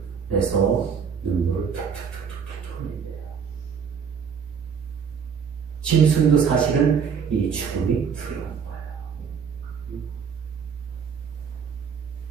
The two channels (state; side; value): quieter; left; 6.8 dB